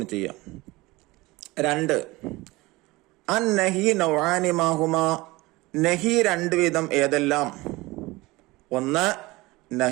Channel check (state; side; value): quieter; left; 21.1 dB